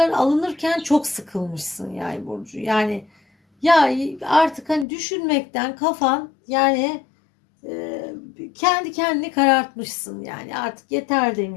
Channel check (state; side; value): drops out; right; at 4.9 s